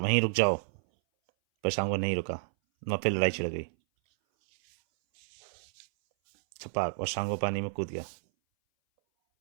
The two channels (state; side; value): silent; left; 58 dB below the other